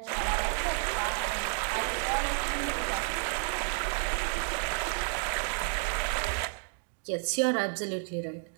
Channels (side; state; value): left; silent; 57 dB below the other